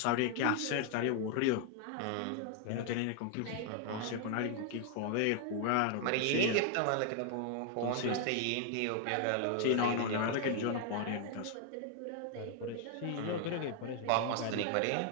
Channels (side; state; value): both; different; correlation 0.00